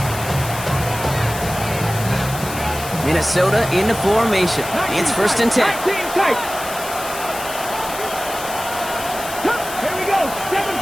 Minnesota into formation. It's 1st and 10.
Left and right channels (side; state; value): left; noise; hiss, 10 dB below the sound